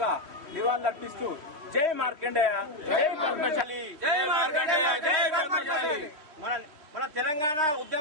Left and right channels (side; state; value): left; late; 3.2 ms